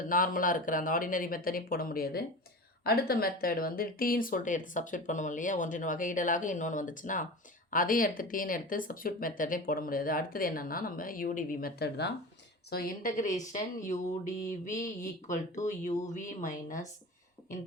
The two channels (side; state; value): both; normal; correlation 0.32